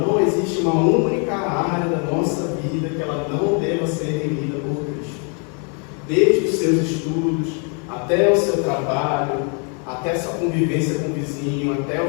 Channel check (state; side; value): quieter; right; 38.7 dB